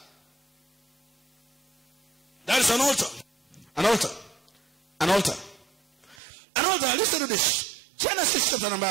is an altar. An altar. An altar. An altar. Listen to this. Genesis chapter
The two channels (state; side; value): drops out; left; at 6.2 s